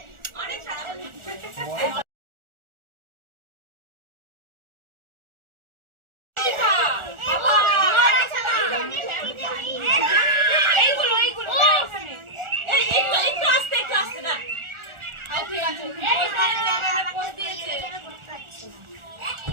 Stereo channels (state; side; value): late; left; 1.4 ms